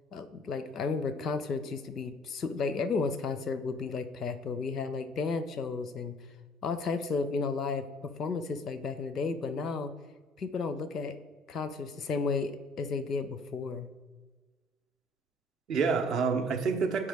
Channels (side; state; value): both; normal; correlation 0.56